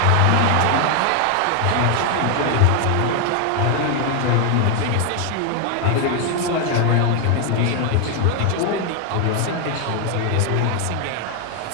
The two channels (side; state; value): both; different; correlation 0.01